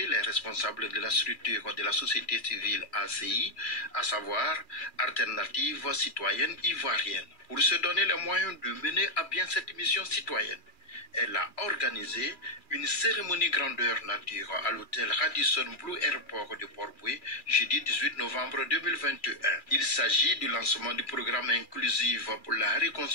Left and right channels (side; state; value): right; late; 2.4 ms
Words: les responsables de la structure de la société civile ACI, à savoir Alternative Citoyenne Ivoirienne. Pour se donner les moyens de mener à bien cette mission citoyenne, elle a organisé une cérémonie grandeur nature à l'hôtel Radisson Blu Airport de Port-Bouët, jeudi 18 novembre 2021. Il s'agit du lancement du programme inclusif pour la